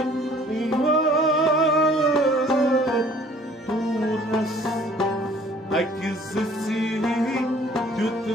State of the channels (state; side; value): normal; both; correlation 0.55